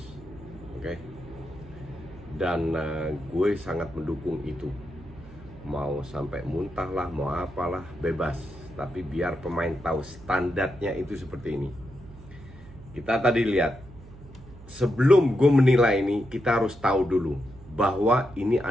Oke. Dan gue sangat mendukung itu. Mau sampai muntah lah, mau apalah, bebas. Tapi biar pemain tahu standarnya itu seperti ini. Kita tadi lihat, sebelum gue menilai ini, kita harus tahu dulu bahwa ini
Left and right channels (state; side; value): noise; right; hum, 19 dB below the sound